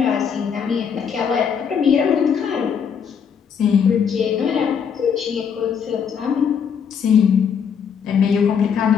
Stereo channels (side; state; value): right; quieter; 7.1 dB